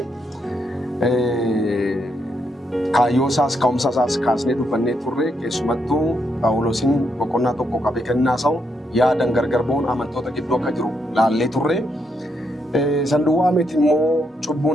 kaayyoo isaas ka'umsa isaas kaasnee dubbannee turre, keessumattuu Phaawulosiin boqonnaa tokko qabee kennaa isaa yaadan gargar ba'uun amantoota gidduu akka jiru laallee turre. Sanduuqaa miti immoo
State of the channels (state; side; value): normal; both; correlation 0.79